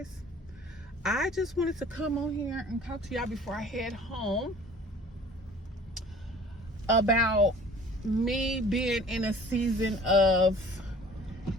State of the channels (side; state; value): both; normal; correlation 0.48